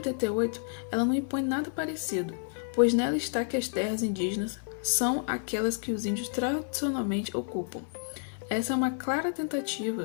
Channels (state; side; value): silent; right; 58 dB below the other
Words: ela não impõe nada parecido, pois nela está que as terras indígenas são aquelas que os índios tradicionalmente ocupam. Essa é uma clara